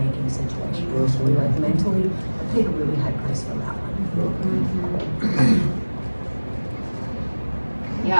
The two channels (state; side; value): inverted; both; correlation -1.00